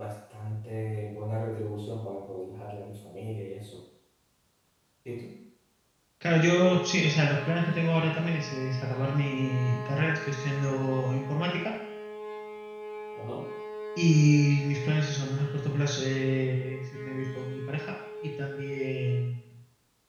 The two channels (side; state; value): both; identical; correlation 1.00